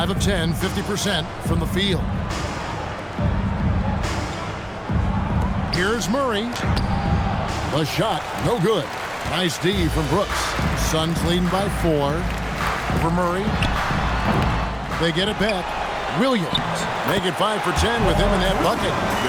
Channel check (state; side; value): identical; both; correlation 1.00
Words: of 10, 50% from the field. Here's Murray. The shot, no good. Nice D from Brooks. Suns leading by 4. Over Murray. They get it back. Williams make it 5 for 10 with him in that bucket.